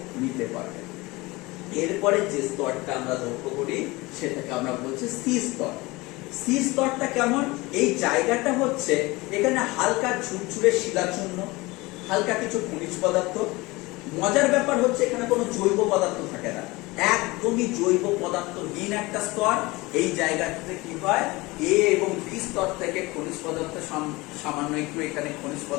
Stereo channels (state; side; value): quieter; right; 22.3 dB